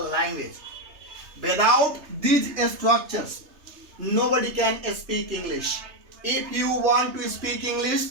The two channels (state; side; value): late; left; 3.3 ms